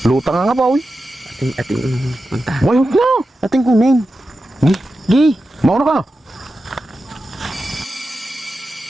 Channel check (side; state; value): both; normal; correlation 0.91